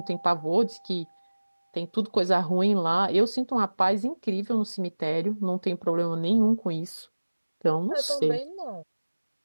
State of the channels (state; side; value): inverted; both; correlation -1.00